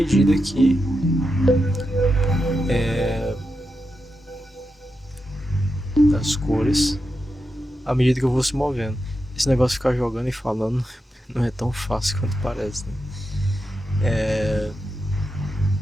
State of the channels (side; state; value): both; normal; correlation 0.87